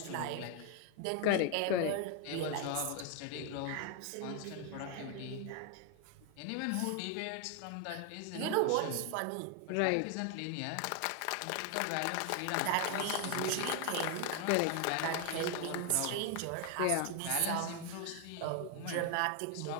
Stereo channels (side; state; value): both; different; correlation 0.01